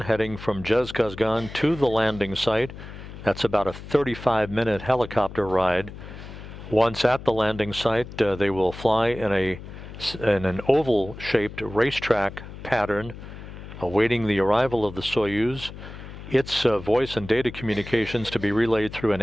heading from Zhezkazgan to the landing site. That's about a 35-minute helicopter ride. Once at the landing site, they will fly in an oval-shaped racetrack pattern, awaiting the arrival of the Soyuz. Its voice and data communications to be relayed through an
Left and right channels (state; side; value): noise; left; hum, 13 dB below the sound